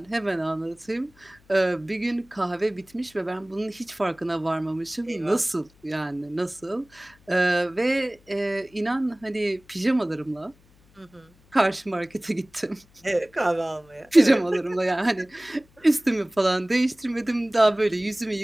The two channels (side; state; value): left; noise; hum, 30 dB below the sound